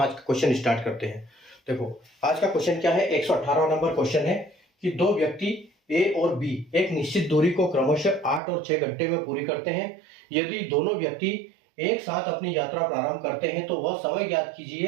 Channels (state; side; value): drops out; left; at 8.4 s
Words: का क्वेश्चन स्टार्ट करते हैं। देखो आज का क्वेश्चन क्या है, 118 नंबर क्वेश्चन है कि दो व्यक्ति A और B एक निश्चित दूरी को क्रमशः 8 और 6 घंटे में पूरी करते हैं। यदि दोनों व्यक्ति एक साथ अपनी यात्रा प्रारंभ करते हैं तो वह समय ज्ञात